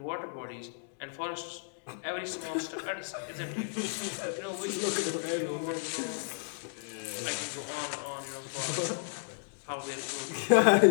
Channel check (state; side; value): silent; right; digital silence